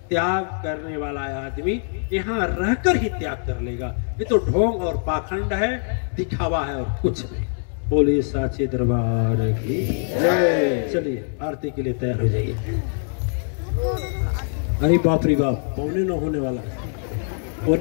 त्याग करने वाला आदमी यहाँ रहकर ही त्याग कर लेगा। ये तो ढोंग और पाखंड है, दिखावा है और कुछ नहीं। बोलिए साचे दरबार की जय। चलिए आरती के लिए तैयार हो जाइए। अरे बाप रे बाप, पौने 9 होने वाला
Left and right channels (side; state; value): right; silent; 62 dB below the other